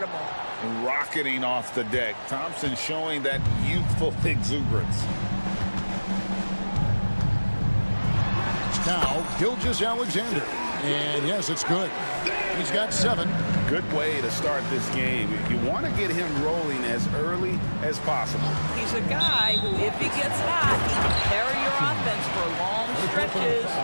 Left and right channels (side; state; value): both; inverted; correlation -1.00